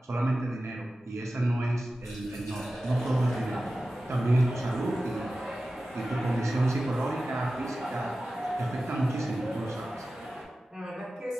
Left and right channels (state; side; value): normal; both; correlation 0.94